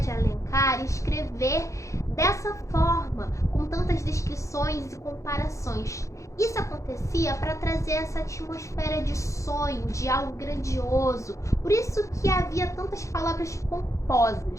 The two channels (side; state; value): right; late; 0.15 ms